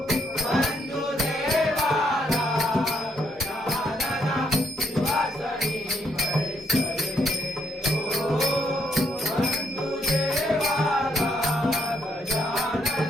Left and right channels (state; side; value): normal; both; correlation 0.74